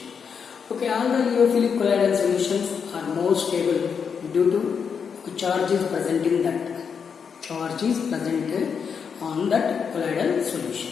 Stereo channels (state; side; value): quieter; right; 6.5 dB